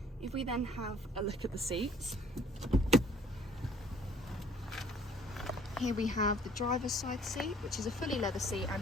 If we then have a look at the seats, here we have the driver's side seat, which is a fully leather seat and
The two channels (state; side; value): normal; both; correlation 0.57